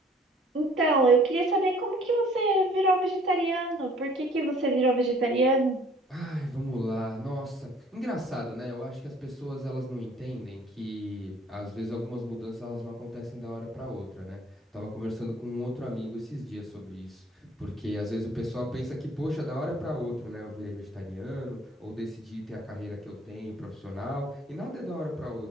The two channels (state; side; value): normal; both; correlation 0.55